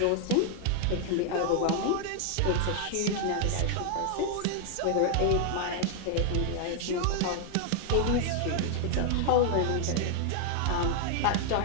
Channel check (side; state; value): both; different; correlation 0.00